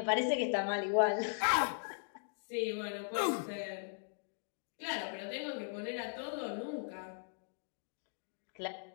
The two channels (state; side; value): silent; right; digital silence